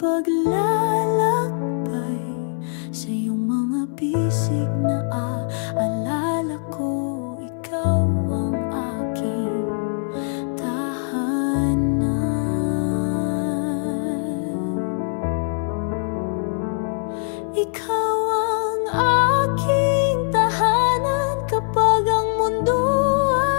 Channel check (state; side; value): silent; right; 64 dB below the other